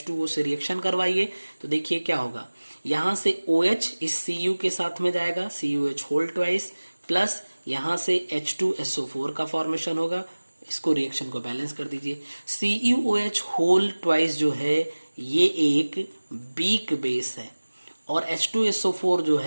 से रिएक्शन करवाइए, तो देखिए क्या होगा। यहां से OH इस Cu के साथ में जाएगा, CuH होल ट्वाइस, प्लस यहां से H2SO4 का फॉर्मेशन होगा। इसको रिएक्शन को बैलेंस कर दीजिए। CuOH होल ट्वाइस जो है ये एक वीक बेस है, और H2SO4 जो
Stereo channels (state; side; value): inverted; both; correlation -1.00